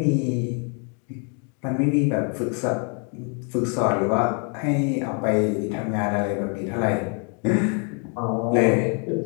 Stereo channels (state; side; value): quieter; right; 39.1 dB